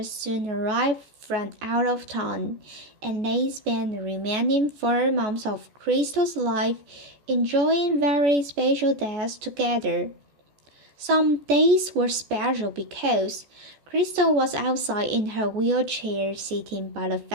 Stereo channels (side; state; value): left; late; 14 ms